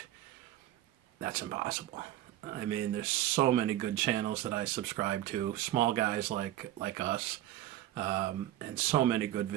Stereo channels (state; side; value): quieter; left; 13.7 dB